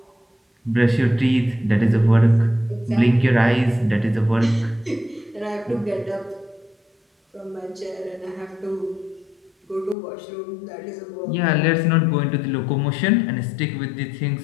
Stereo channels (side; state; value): right; drops out; at 10.0 s